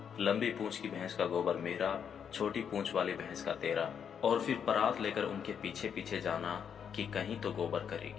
लंबी पूंछ की भैंस का गोबर मेरा, छोटी पूंछ वाली भैंस का तेरा, और फिर परात लेकर उनके पीछे पीछे जाना कि कहीं तो गोबर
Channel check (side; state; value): right; quieter; 7.7 dB